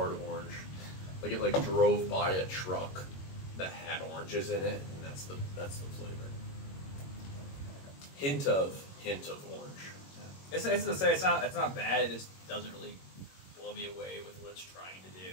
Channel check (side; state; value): right; late; 21 ms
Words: of orange. Like it like drove by a truck that had oranges in it, and that's the flavor. Hint of orange. It's not bad. It just doesn't really blow me away with what it's trying to